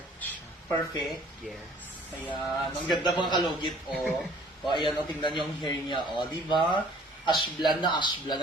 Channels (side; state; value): both; normal; correlation 0.55